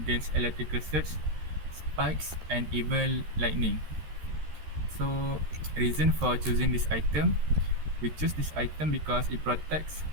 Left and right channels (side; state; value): left; late; 13 ms